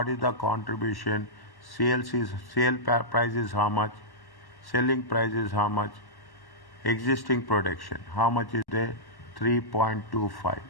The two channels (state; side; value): late; right; 1.1 ms